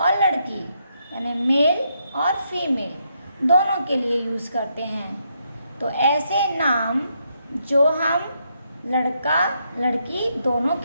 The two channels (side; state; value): both; inverted; correlation -0.78